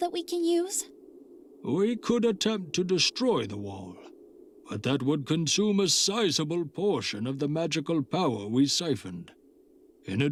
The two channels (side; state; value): both; identical; correlation 1.00